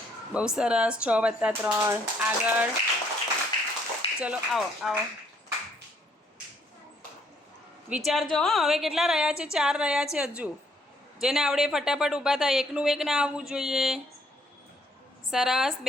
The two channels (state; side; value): normal; both; correlation 0.67